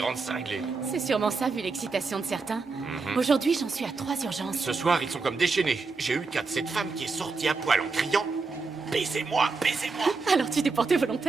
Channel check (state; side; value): quieter; left; 4.2 dB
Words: cinglés. C'est sûrement ça, vu l'excitation de certains. Aujourd'hui, j'en suis à 3 urgences. Ce soir, ils sont comme déchaînés. J'ai eu le cas de cette femme qui est sortie à poil en criant « Baisez-moi, baisez-moi !» Alors tu t'es porté